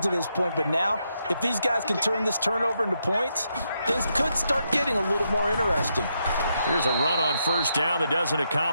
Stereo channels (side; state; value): both; inverted; correlation -0.81